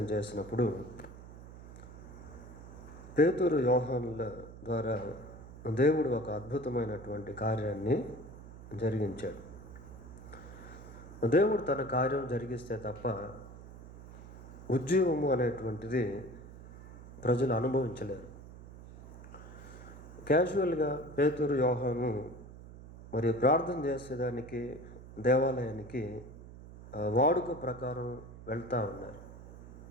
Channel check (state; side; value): noise; right; hum, 16 dB below the sound